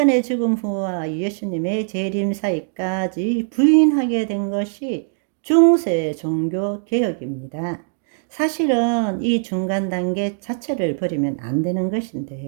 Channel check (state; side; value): silent; left; digital silence